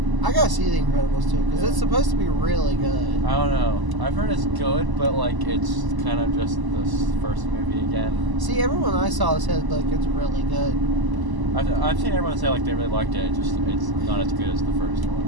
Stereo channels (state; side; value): late; left; 1.0 ms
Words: I gotta see The Incredibles 2 because it's supposed to be really good. I don't know. I've heard it's good, but like it's kind of just this first movie again. See, everyone I saw said like it's really good. I've seen everyone say like they really liked it. It's not as good as the first